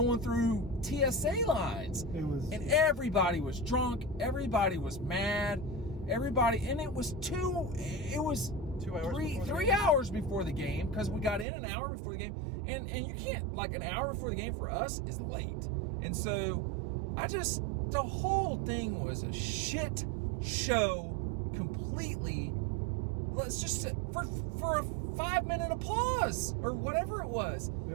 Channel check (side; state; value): left; drops out; at 11.5 s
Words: through TSA lines. And everybody was drunk. Everybody was mad. And it was 3 hours before the game, because we got in an hour before the game. And you can't, an hour before the game for us is late. And so the whole thing was a shit show completely. Let's just for a 5-minute applause or whatever it was.